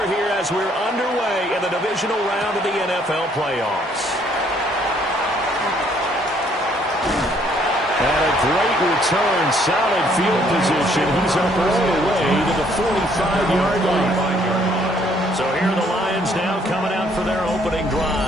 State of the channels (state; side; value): normal; both; correlation 0.65